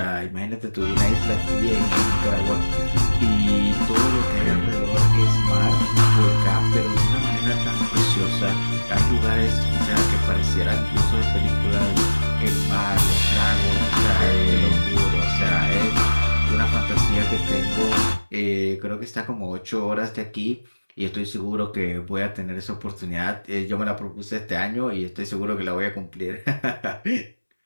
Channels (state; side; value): inverted; both; correlation -1.00